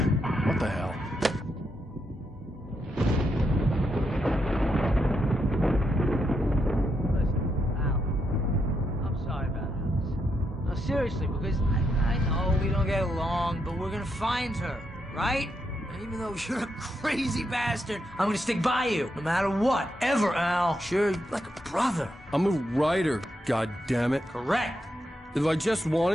the hell? I'm sorry about this. No, seriously, because I know we don't get along, but we're gonna find her, right? And even though you're a crazy bastard, I'm gonna stick by you, no matter what, ever, Al. Sure, like a brother. I'm a writer, goddammit. Correct. If I just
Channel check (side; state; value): both; normal; correlation 0.81